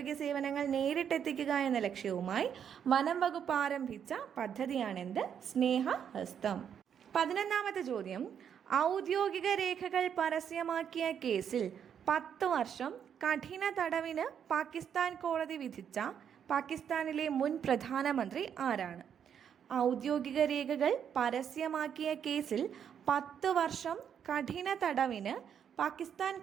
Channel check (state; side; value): quieter; left; 8.3 dB